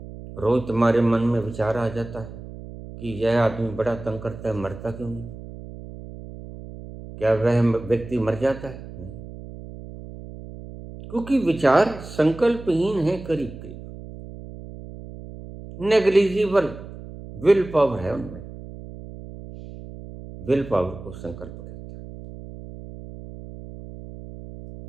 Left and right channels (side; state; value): right; noise; hum, 14 dB below the sound